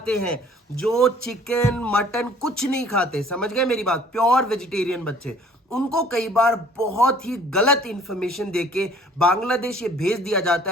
हैं, जो चिकन मटन कुछ नहीं खाते, समझ गए मेरी बात? प्योर वेजिटेरियन बच्चे, उनको कई बार बहुत ही गलत इंफॉर्मेशन देके बांग्लादेश ये भेज दिया जाता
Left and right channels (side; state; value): both; normal; correlation 0.54